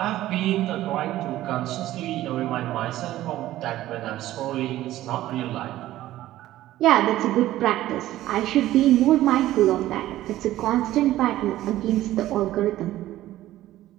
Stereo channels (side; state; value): left; quieter; 14.6 dB